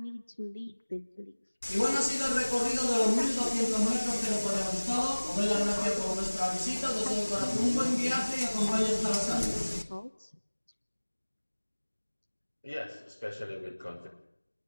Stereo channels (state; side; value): inverted; both; correlation -1.00